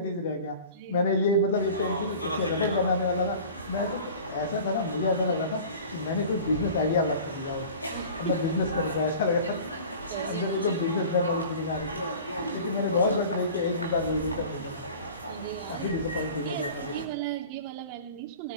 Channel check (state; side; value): inverted; both; correlation -0.41